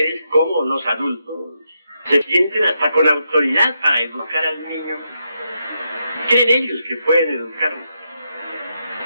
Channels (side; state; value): both; inverted; correlation -0.82